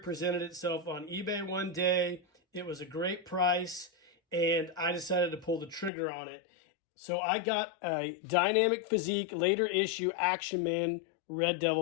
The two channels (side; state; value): right; drops out; at 5.9 s